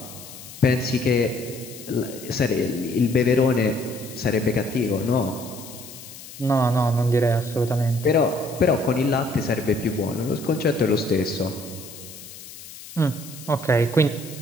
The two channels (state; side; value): noise; left; hiss, 15 dB below the sound